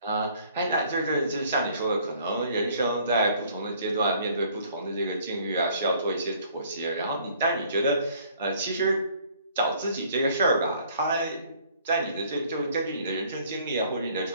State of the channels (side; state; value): both; inverted; correlation -0.58